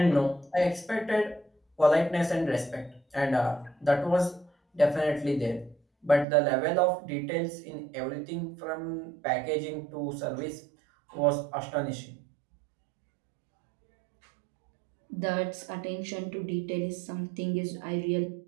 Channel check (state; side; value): drops out; left; at 6.2 s